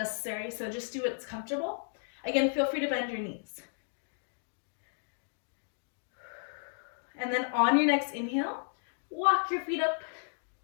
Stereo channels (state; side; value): silent; right; digital silence